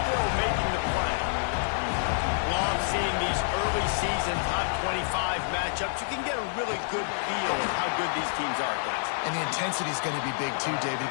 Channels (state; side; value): silent; right; 58 dB below the other